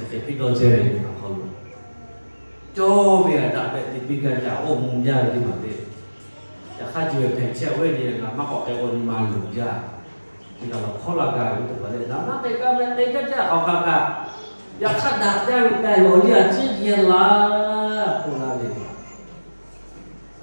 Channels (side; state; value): both; inverted; correlation -1.00